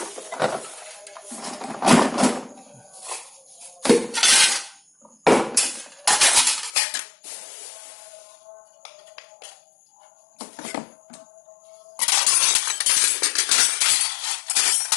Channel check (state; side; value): drops out; right; at 6.7 s